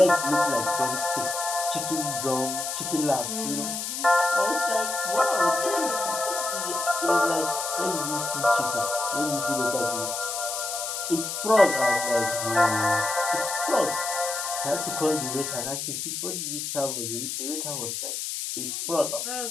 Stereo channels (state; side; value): noise; left; hiss, 4 dB below the sound